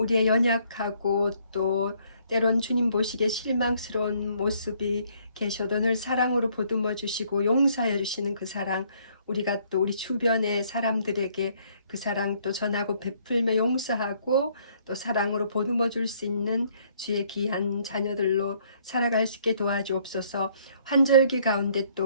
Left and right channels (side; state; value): both; inverted; correlation -0.65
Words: 연약하고 또 때론 주님 보시기에 실망스러운 모습이 계셔도 늘 사랑으로 보듬어 주시고 용서해 주시는 그 사랑, 우리가 또 우리 주변의 사람들에게 그 사랑 또 전하고 베풀며 용서하고 또 사랑으로 보듬어 줄 수 있는 주의 귀한 자녀들로 살아갈 수 있게 도와주옵소서. 환절기 가운데